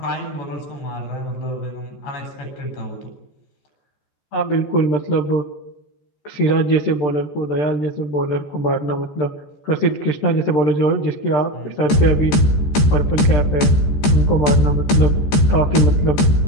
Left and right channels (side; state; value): right; late; 14 ms